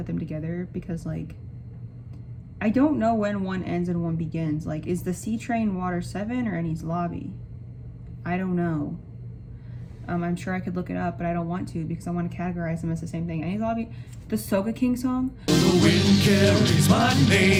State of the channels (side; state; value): both; identical; correlation 1.00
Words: them together because like I don't know when one ends and one begins. Like, is the Sea Train Water 7 or Annie's Lobby? I don't know. I'm sure I could look it up, but I don't want to because I want to categorize them as the same thing. Annie's Lobby, the Soga King song. The wind carries my